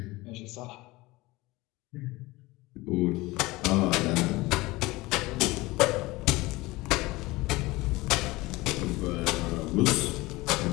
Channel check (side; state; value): right; quieter; 21.0 dB